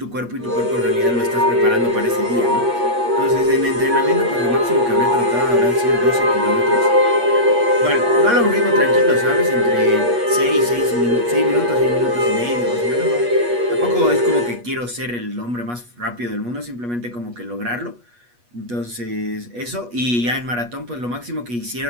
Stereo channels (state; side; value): late; left; 8.3 ms